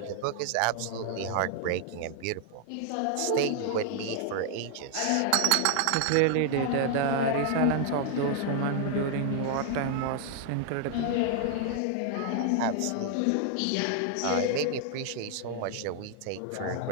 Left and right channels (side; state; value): both; different; correlation 0.00